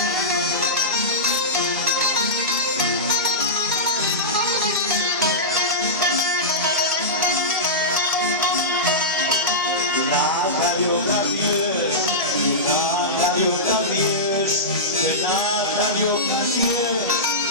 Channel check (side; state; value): both; normal; correlation -0.15